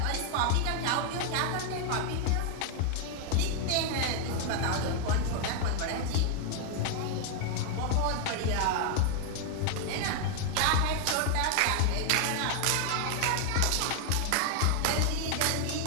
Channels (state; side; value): different; both; correlation 0.00